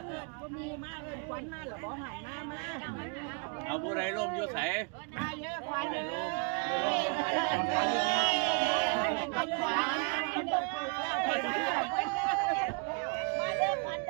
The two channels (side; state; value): left; quieter; 36.2 dB